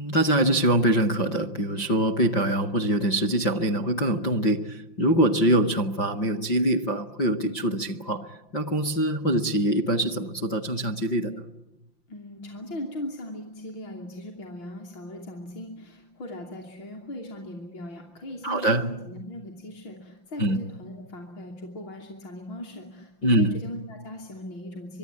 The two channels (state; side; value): late; right; 5.8 ms